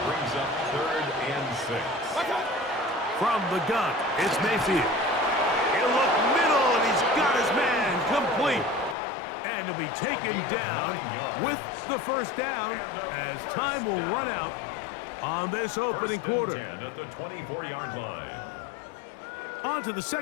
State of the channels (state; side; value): drops out; right; at 9.0 s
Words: Brings up 3rd and 6. From the gun, it's Mayfield. He'll look middle, and he's got his man complete. And to be taken down with the first down as time will run out on this opening quarter. 10 at the 24-yard line. On to the